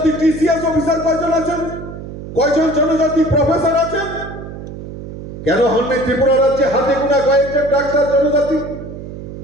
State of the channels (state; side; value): noise; right; hum, 11 dB below the sound